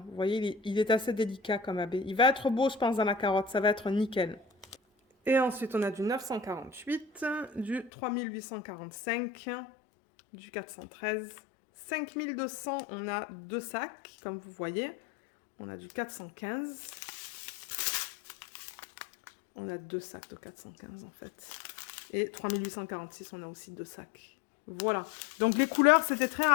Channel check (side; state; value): right; drops out; at 7.9 s